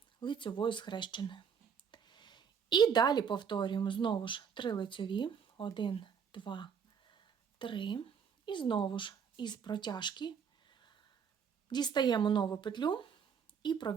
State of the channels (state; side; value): quieter; left; 6.9 dB